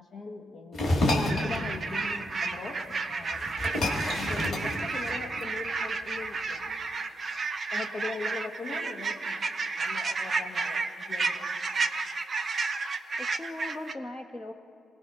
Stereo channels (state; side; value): normal; both; correlation 0.82